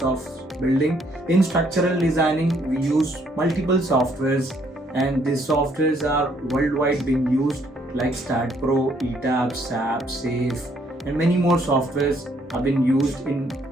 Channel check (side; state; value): both; normal; correlation 0.67